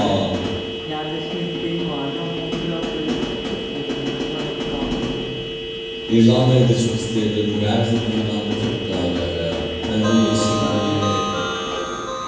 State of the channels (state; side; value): identical; both; correlation 1.00